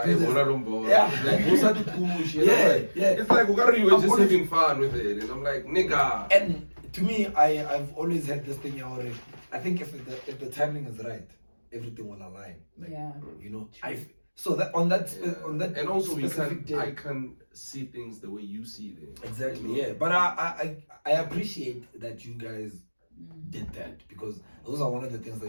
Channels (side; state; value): both; inverted; correlation -1.00